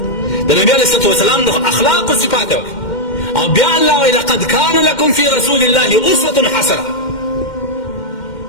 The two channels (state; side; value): late; right; 2.1 ms